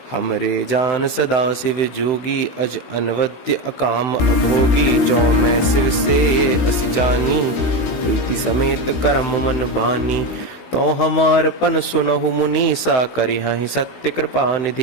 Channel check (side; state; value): right; late; 16 ms